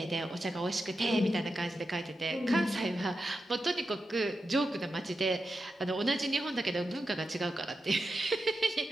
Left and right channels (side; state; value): both; normal; correlation 0.89